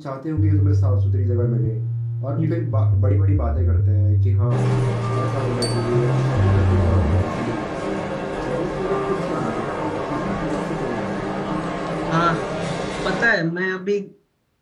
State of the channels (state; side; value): identical; both; correlation 1.00